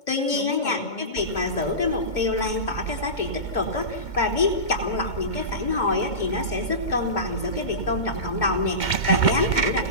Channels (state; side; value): late; right; 2.2 ms